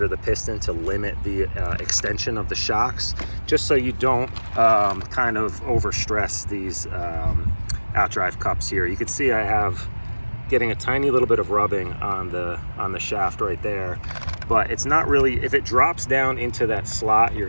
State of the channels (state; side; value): inverted; both; correlation -1.00